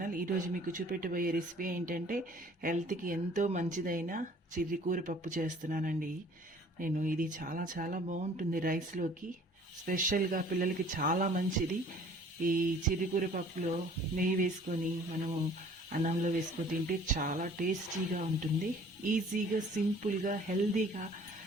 ఈరోజు మీకు చూపెట్టబోయే రెసిపీ ఏంటంటే హెల్త్కి ఎంతో మంచిదైన చిర్రికూర పప్పు చేస్తున్నానండి. ఇది చాలా చాలా బాగుంటుంది రైస్లోకి. స్పెషల్గా పిల్లలకి చాలా మంచిది. ఈ చిర్రికూర పప్పులో నెయ్యి వేసుకొని మనము అన్నంలో వేసుకొని తింటే చాలా టేస్టీగా ఉంటుంది. ఈజీగా, సింపుల్గా, హెల్తీగా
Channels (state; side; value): normal; both; correlation 0.52